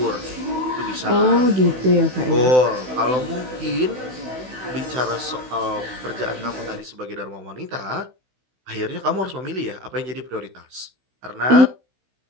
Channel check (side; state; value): left; late; 16 ms